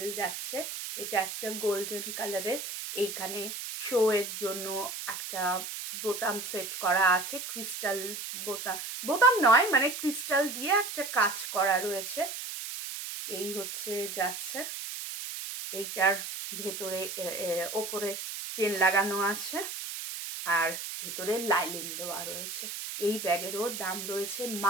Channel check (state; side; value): noise; right; hiss, 7 dB below the sound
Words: যাচ্ছে। এটা একটা গোল্ডেন কালারের। এইখানে শো এর জন্য একটা বোতাম সেট করা আছে, ক্রিস্টাল বোতাম, বোতাম নয় মানে ক্রিস্টাল দিয়ে একটা কাজ করা রয়েছে। এই হচ্ছে যাচ্ছে, এইটার ভেতরে ওপরে চেন লাগানো আছে আর ভেতরে লাইনিং দেওয়া রয়েছে। এই ব্যাগেরও দাম রয়েছে